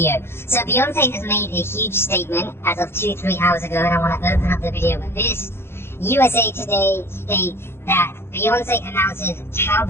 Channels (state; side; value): late; right; 0.12 ms